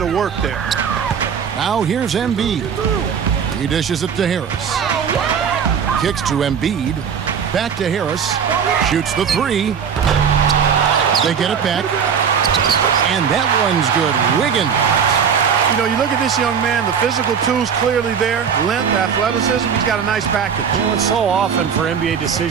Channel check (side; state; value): left; quieter; 7.1 dB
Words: of work there. Now here's Embiid. He dishes it to Harris. Kicks to Embiid. Back to Harris. Shoots the 3. They get it back. And that one's good. Wiggins. You know, you look at this young man, the physical tools clearly there. Length, athleticism, he's got a nice package. You know, it's so often for NBA